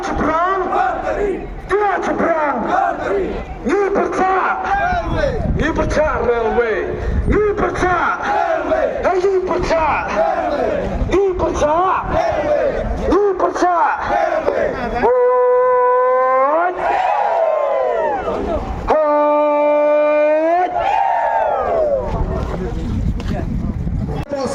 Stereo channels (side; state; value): both; identical; correlation 1.00